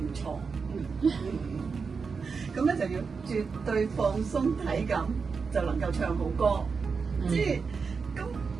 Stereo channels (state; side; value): quieter; left; 5.2 dB